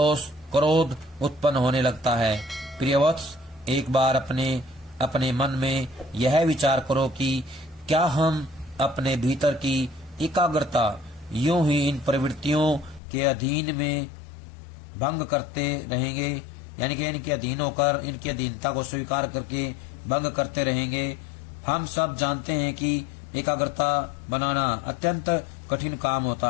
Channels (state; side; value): drops out; right; at 13.0 s